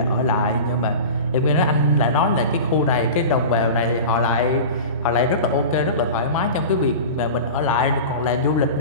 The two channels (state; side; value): inverted; both; correlation -0.32